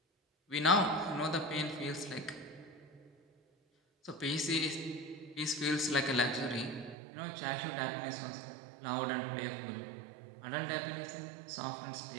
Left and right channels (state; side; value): drops out; left; at 7.0 s